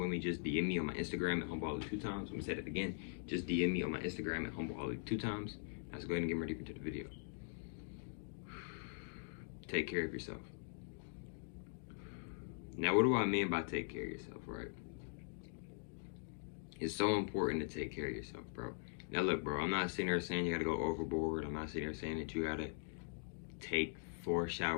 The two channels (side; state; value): right; silent; digital silence